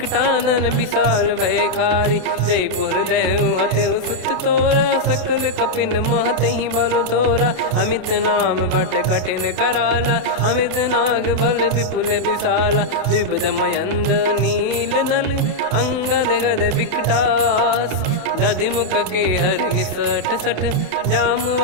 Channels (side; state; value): left; late; 28 ms